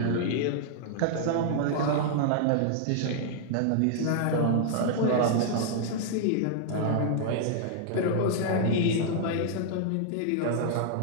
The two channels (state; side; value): different; both; correlation -0.01